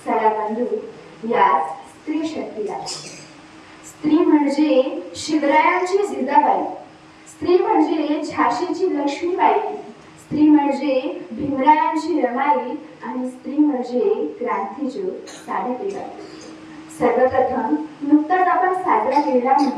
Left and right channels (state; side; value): identical; both; correlation 1.00